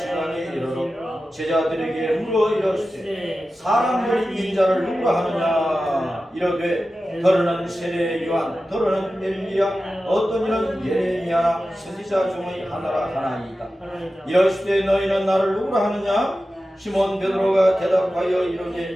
이르러 제자들에게 물어 이르시되 사람들이 인자를 누구라 하느냐 이르되 더러는 세례 요한 더러는 엘리야 어떤 이는 예레미야나 선지자 중의 하나라 하나이다. 이르시되 너희는 나를 누구라 하느냐 시몬 베드로가 대답하여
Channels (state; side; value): normal; both; correlation 0.94